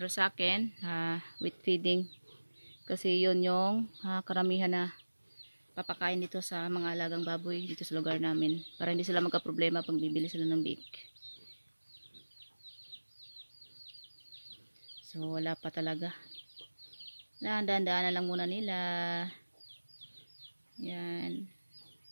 sa akin, wheat feeding. Kasi yun yung karamihan na papakain dito sa mga alagang baboy dito sa lugar namin. Para hindi sila magka-problema pag bibili sila ng bake. So wala pa talaga. Dahan-dahan na lang muna nila. Yan.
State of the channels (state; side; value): inverted; both; correlation -1.00